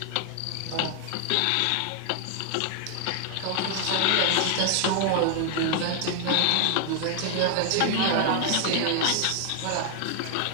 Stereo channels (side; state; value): both; different; correlation 0.00